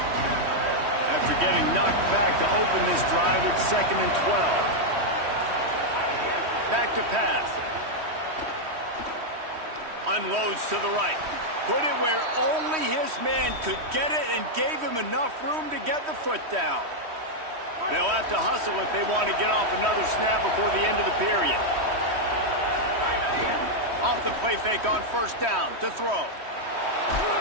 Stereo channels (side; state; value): left; late; 3.1 ms